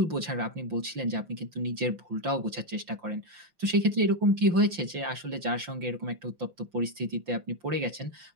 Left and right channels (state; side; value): late; left; 5.8 ms